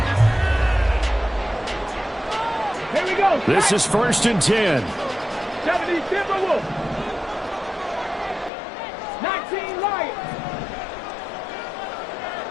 Here we go. This is 1st and 10. 70 Timberwolves. 19 Lions.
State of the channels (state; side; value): drops out; right; at 8.5 s